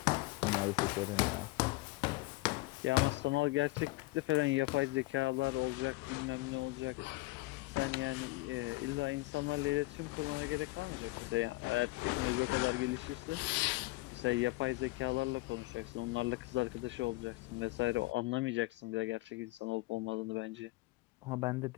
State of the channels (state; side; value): quieter; right; 21.6 dB